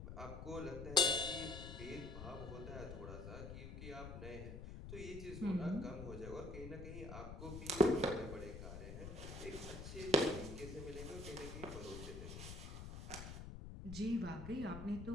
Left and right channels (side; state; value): left; noise; rumble, 9 dB below the sound